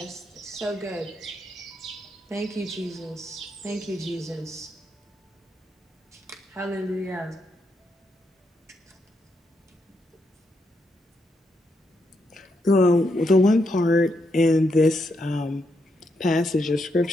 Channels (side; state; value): both; normal; correlation 0.80